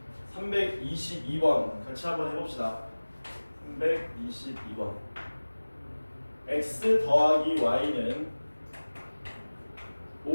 322번 같이 한번 해봅시다. 322번. x 더하기 y는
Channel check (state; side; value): inverted; both; correlation -1.00